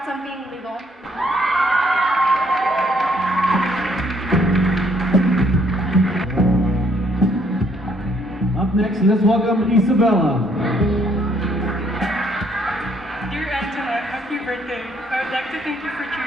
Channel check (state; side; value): normal; both; correlation 0.67